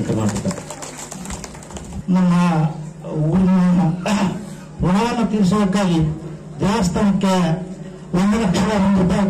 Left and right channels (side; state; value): both; identical; correlation 1.00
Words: ಕರ್ನಾಟಕ. ನಮ್ಮ ಊರಿನ ಋಣವನ್ನು ತೀರಿಸುವುದಕ್ಕಾಗಿ ದೇವಸ್ಥಾನಕ್ಕೆ ₹1,00,000